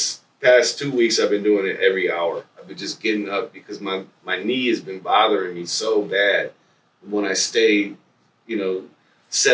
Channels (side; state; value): both; identical; correlation 1.00